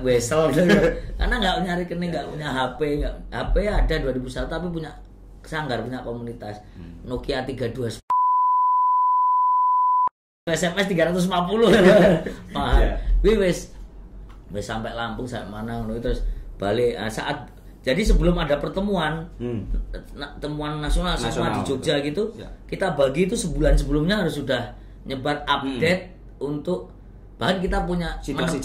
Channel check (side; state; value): both; identical; correlation 1.00